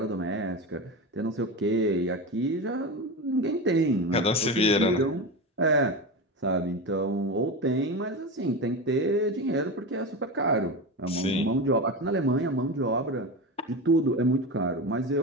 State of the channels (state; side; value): normal; both; correlation 0.22